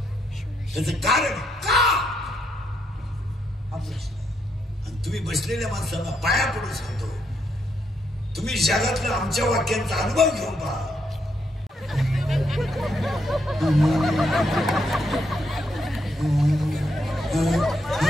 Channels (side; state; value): both; normal; correlation 0.77